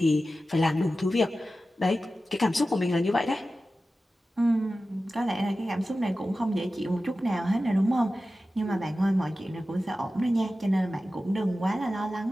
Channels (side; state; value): both; normal; correlation 0.94